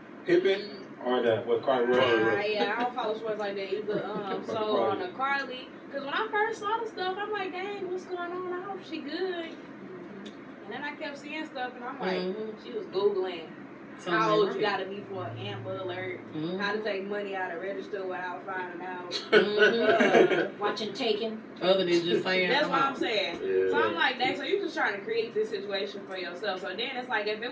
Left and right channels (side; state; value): both; identical; correlation 1.00